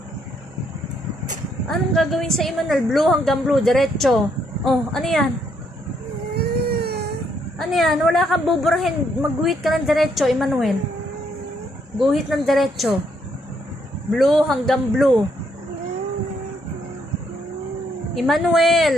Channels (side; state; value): both; normal; correlation 0.73